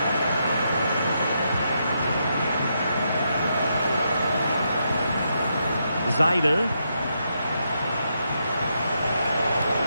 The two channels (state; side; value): inverted; both; correlation -0.81